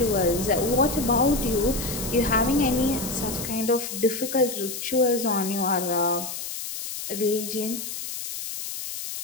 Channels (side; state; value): left; noise; hiss, 7 dB below the sound